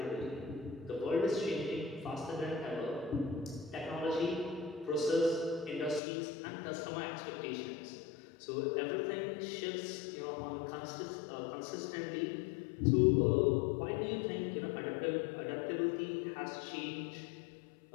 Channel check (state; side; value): drops out; right; at 6.0 s